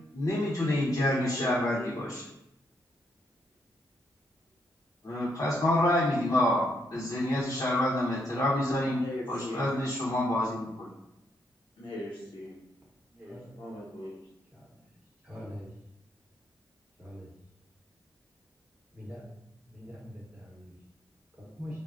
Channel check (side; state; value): both; normal; correlation 0.75